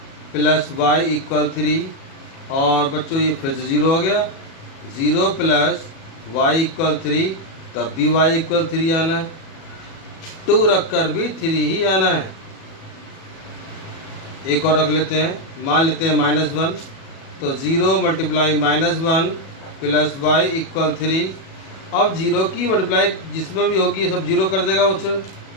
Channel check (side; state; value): right; late; 37 ms